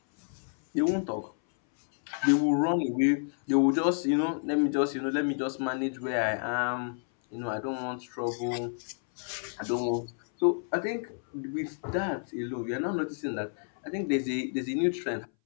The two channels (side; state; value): right; silent; 58 dB below the other